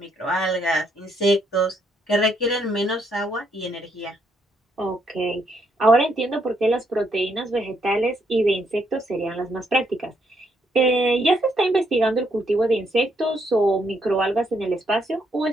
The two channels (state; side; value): normal; both; correlation 0.74